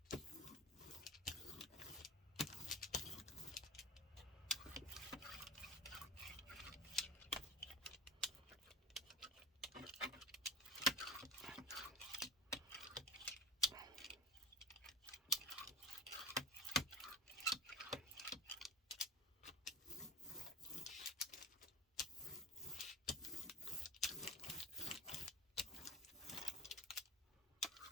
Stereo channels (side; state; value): both; normal; correlation 0.35